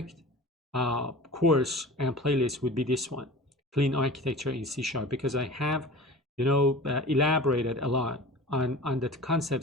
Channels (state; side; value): normal; both; correlation 0.38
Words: course and playlist would be this one, Clean Architecture in C#, because I have, elaborated a lot on the